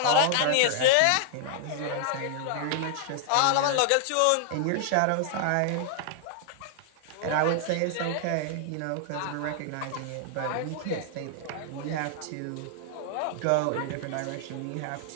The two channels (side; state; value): both; different; correlation 0.00